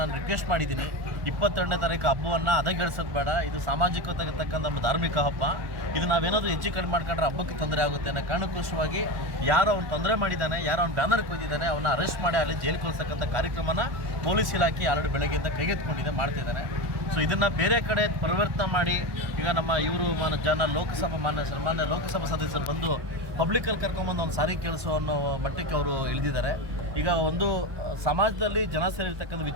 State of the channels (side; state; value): left; late; 1.1 ms